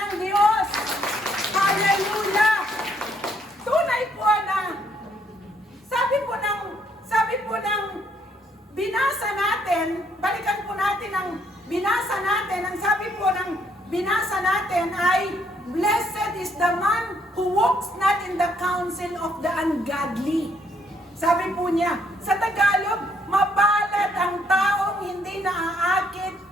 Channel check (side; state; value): both; normal; correlation 0.69